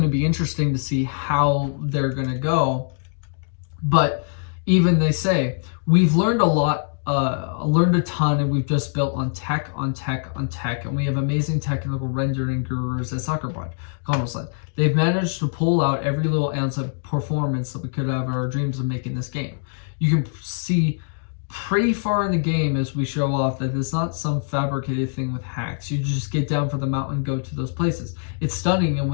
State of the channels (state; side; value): silent; right; digital silence